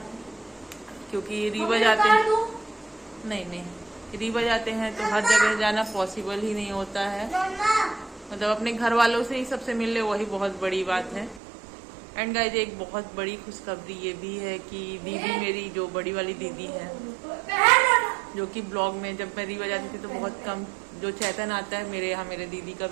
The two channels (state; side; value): drops out; left; at 11.4 s